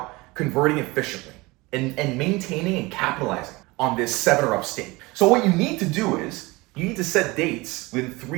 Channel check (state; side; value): quieter; left; 22.9 dB